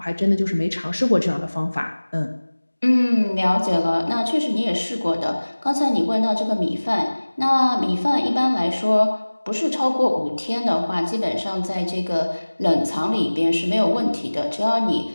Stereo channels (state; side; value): inverted; both; correlation -1.00